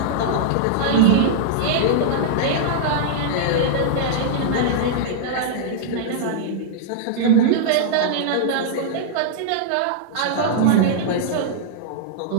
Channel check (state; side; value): different; both; correlation -0.02